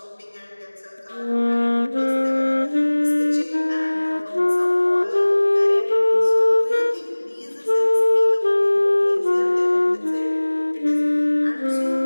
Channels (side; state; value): both; inverted; correlation -1.00